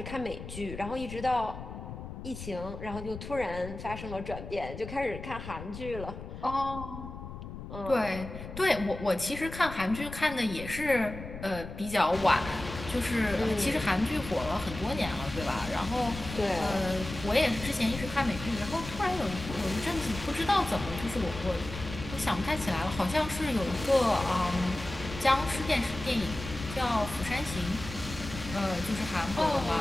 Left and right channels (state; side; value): noise; left; rumble, 10 dB below the sound